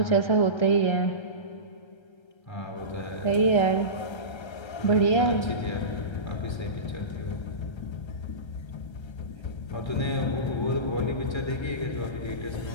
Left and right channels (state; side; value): late; right; 1.3 ms